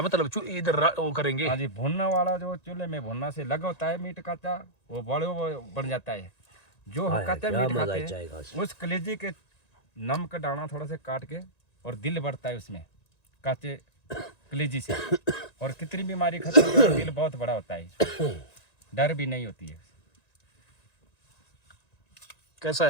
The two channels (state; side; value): late; right; 1.9 ms